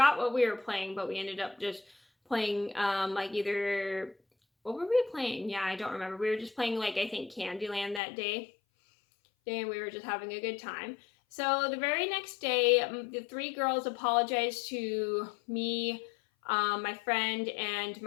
what we were playing, but we ended up just playing like either what were we playing? Yeah, I don't remember. We were just playing like I think Candyland that day. And we were just having a good time. So the very next day, the three girls apologized to me, my friend, and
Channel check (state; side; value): drops out; right; at 8.0 s